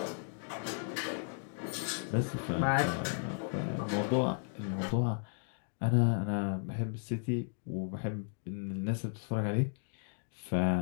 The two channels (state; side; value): silent; right; 55 dB below the other